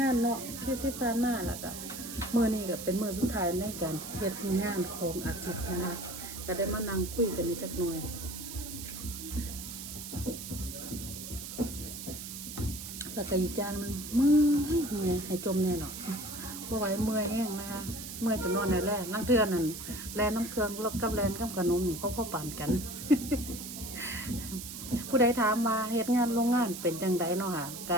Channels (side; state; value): right; noise; hiss, 9 dB below the sound